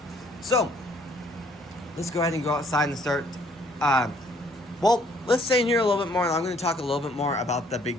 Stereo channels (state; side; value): normal; both; correlation 0.63